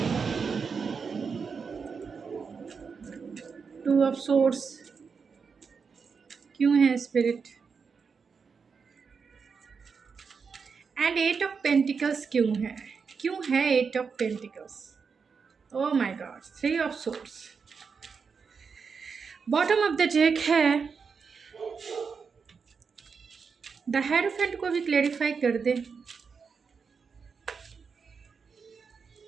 टू ऑफ सोर्ड्स क्यों है spirit, and eight of pentacles क्यों है eight of pentacles. Oh my God, three of swords. Bottom of the deck है द हेरोफेंट को भी क्लेरिफाई कर दे।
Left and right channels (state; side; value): quieter; left; 5.6 dB